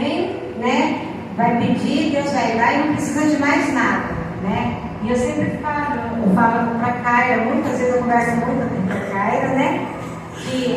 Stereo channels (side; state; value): both; identical; correlation 1.00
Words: né? Vai pedir, Deus vai dar e não precisa de mais nada, né? E eu sempre falo para a Caira, muitas vezes eu converso muito com a Caira, né?